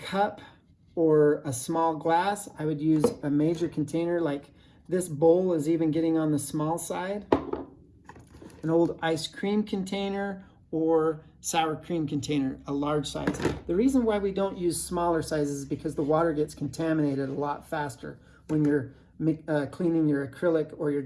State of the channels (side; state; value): both; identical; correlation 1.00